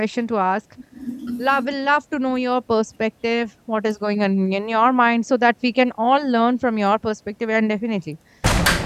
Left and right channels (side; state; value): both; identical; correlation 1.00